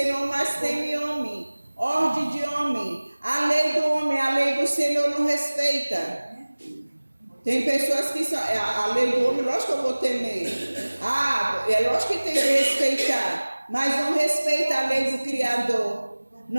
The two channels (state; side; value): inverted; both; correlation -1.00